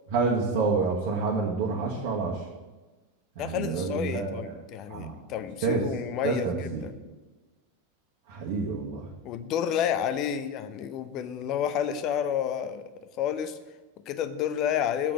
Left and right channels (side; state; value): both; normal; correlation 0.18